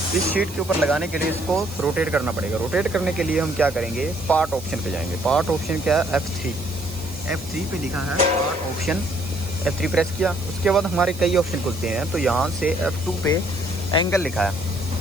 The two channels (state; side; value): noise; right; hiss, 17 dB below the sound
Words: इस शीट के ऊपर लगाने के लिए इसको रोटेट करना पड़ेगा। रोटेट करने के लिए हम क्या करेंगे, पार्ट ऑप्शन पे जाएंगे। पार्ट ऑप्शन क्या है, F3 पे लिखा है पार्ट ऑप्शन। F3 प्रेस किया। उसके बाद हमारे कई ऑप्शन खुलते हैं। तो यहाँ से F2 पे एंगल लिखा है,